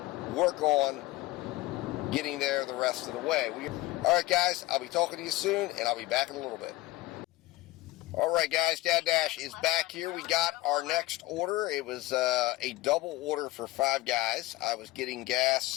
work on getting there the rest of the way. All right, guys, I'll be talking to you soon, and I'll be back in a little bit. All right, guys, DoorDash is back here. We got our next order. It was a double order for 5 guys. I was getting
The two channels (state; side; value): quieter; right; 18.5 dB